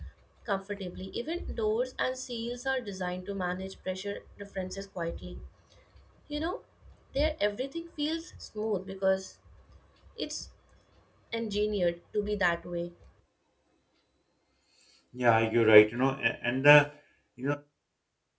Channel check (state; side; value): identical; both; correlation 1.00